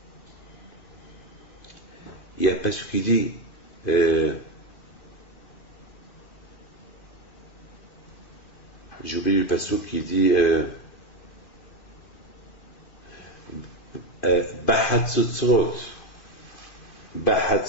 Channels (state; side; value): late; right; 2.5 ms